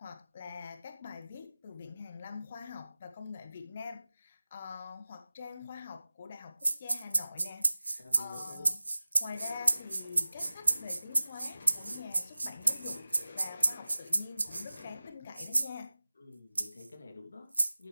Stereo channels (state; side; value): inverted; both; correlation -0.97